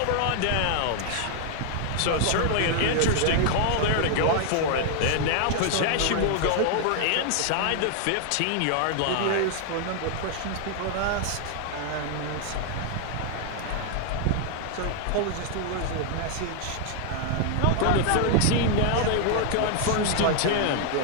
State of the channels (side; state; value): both; different; correlation 0.00